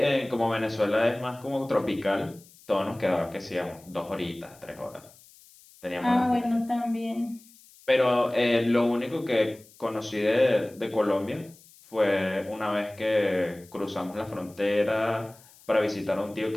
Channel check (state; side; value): noise; left; hiss, 25 dB below the sound